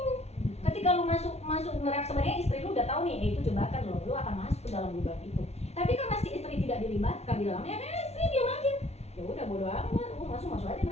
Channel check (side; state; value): right; late; 0.31 ms